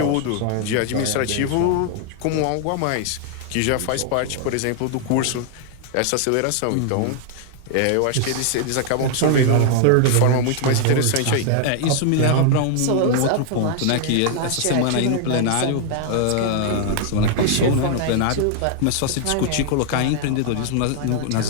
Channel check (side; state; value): both; different; correlation 0.00